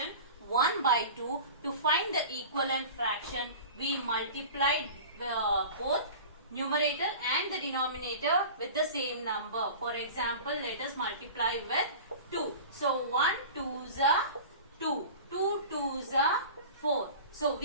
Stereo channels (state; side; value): inverted; both; correlation -0.37